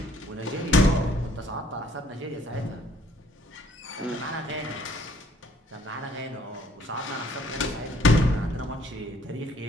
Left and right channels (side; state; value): both; normal; correlation 0.62